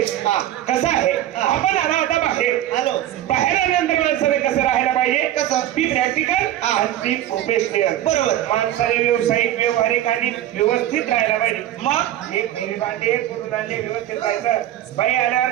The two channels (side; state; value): left; quieter; 12.8 dB